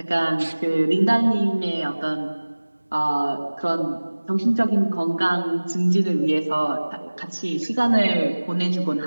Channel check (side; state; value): both; inverted; correlation -1.00